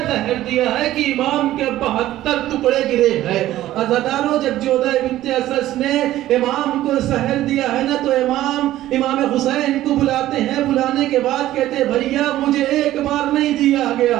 زہر دیا ہے کہ امام کے 72 ٹکڑے گرے ہیں۔ عزاداروں، جب جودہ بنت اسد نے امام کو زہر دیا ہے نا تو امام حسین کو بلاتے ہیں، بلانے کے بعد کہتے ہیں بھیا مجھے ایک بار نہیں دیا گیا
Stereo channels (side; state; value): left; quieter; 14.4 dB